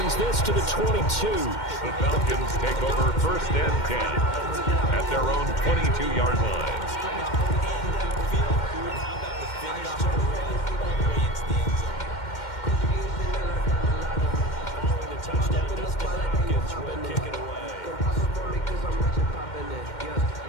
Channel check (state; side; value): late; right; 2.1 ms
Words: this to the 22. The Falcons take over 1st and 10 at their own 22-yard line.